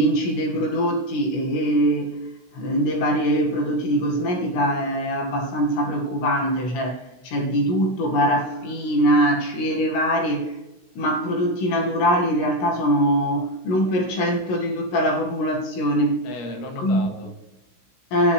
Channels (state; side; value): late; right; 16 ms